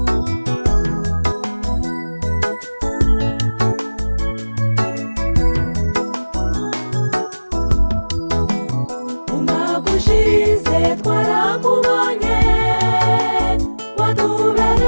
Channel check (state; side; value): inverted; both; correlation -1.00